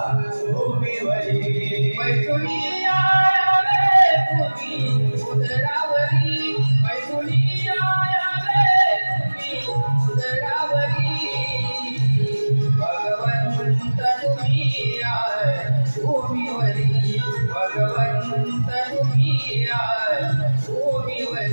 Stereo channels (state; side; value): inverted; both; correlation -1.00